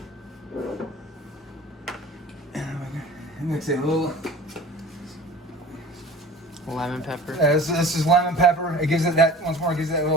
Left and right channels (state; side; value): normal; both; correlation 0.41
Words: mix it a little. Lemon pepper. This is lemon pepper. It gives it that, once more, it gives it that